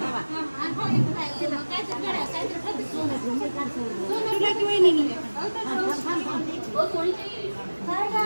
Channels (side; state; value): both; inverted; correlation -1.00